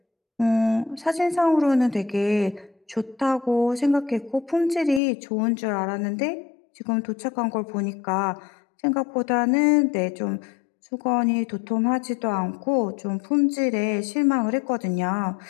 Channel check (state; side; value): drops out; right; at 5.0 s